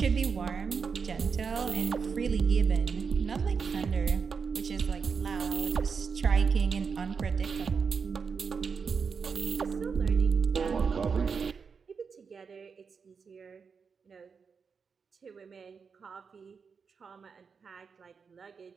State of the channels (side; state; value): left; quieter; 5.7 dB